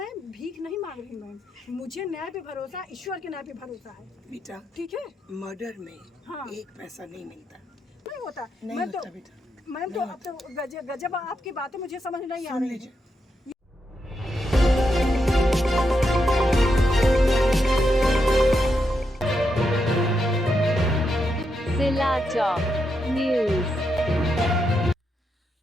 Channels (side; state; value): both; normal; correlation 0.83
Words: भीख नहीं मांग रही मैम, मुझे न्याय पे भरोसा, ईश्वर के न्याय पे भरोसा है बेटा। ठीक है, मर्डर में हाँ। एक पैसा नहीं मिलता, नहीं होता नहीं मैं होता तो बेटा, मैम तो अब तो गजब आपकी बातें मुझे समझ नहीं आ सुन रही लीजिए। है। सिलाचौक न्यूज।